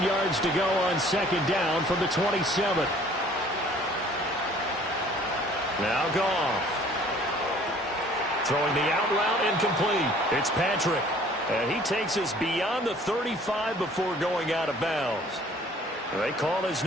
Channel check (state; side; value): normal; both; correlation 0.54